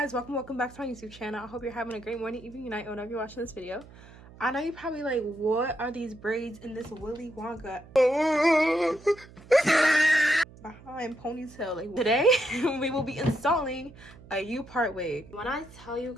guys, welcome back to my YouTube channel. I hope you're having a great morning, evening, night, whenever you're watching this video. I know you're probably like, what are these braids in this Willy Wonka behind ponytail? Like, today we will be installing a Upart wig. When I tell you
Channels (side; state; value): right; noise; hum, 21 dB below the sound